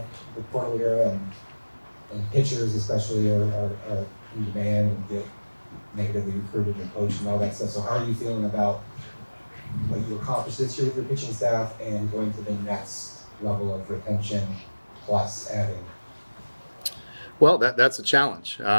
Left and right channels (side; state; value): both; inverted; correlation -1.00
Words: portal era, and pitchers especially are in demand and get negatively recruited and coached and all that stuff. So how are you feeling about what you accomplished this year with your pitching staff and going to the next level of retention plus adding? Well, that's a challenge,